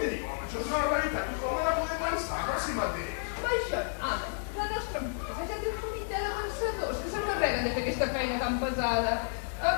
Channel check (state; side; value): silent; right; digital silence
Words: diu, home? Això és una realitat. Tothom ha de poder pensar per si mateix. Això nada. La nostra empresa ja té un comitè de pensadors que s'encarreguen de fer aquesta feina tan pesada.